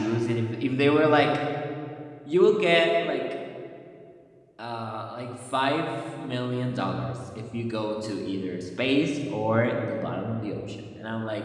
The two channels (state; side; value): identical; both; correlation 1.00